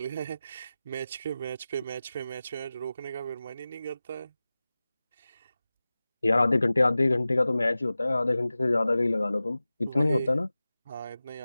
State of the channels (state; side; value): inverted; both; correlation -0.96